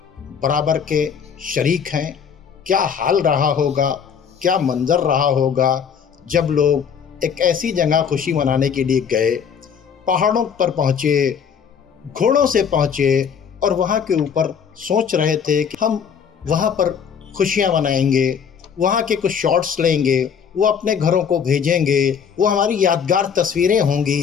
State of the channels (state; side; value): quieter; right; 7.2 dB